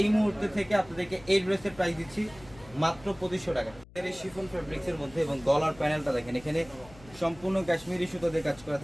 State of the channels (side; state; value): left; noise; hum, 22 dB below the sound